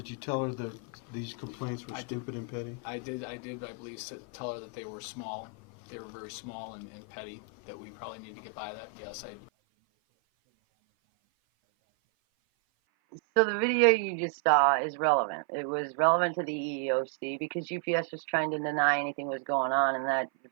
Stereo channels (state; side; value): drops out; left; at 9.5 s